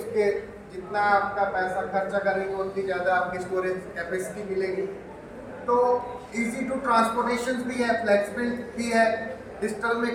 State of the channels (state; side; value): identical; both; correlation 1.00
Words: जितना आपका पैसा खर्चा करेंगे उतनी ज़्यादा आपकी स्टोरेज कैपेसिटी मिलेगी। तो इजी टू ट्रांसपोर्टेशन भी है, फ्लेक्सिबल भी है। डिजिटल में